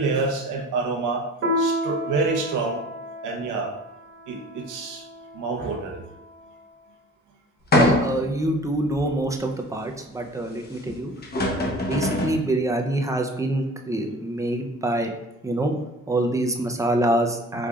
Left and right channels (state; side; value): normal; both; correlation 0.44